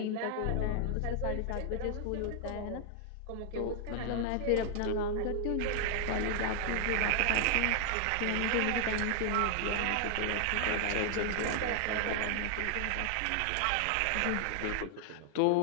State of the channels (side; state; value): both; different; correlation 0.00